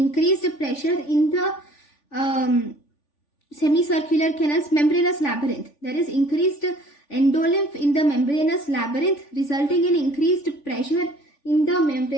pressure in the semicircular canal's membranous labyrinth. There is increased endolymph in the membranous labyrinth, resulting in increased pressure in the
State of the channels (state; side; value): late; right; 3.5 ms